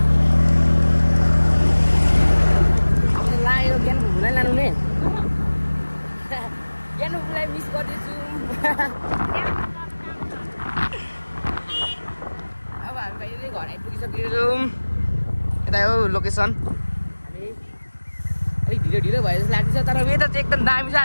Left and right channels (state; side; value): inverted; both; correlation -1.00